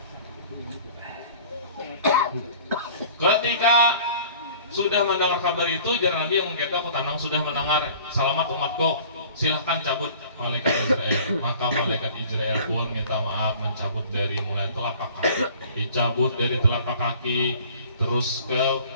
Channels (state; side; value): inverted; both; correlation -0.48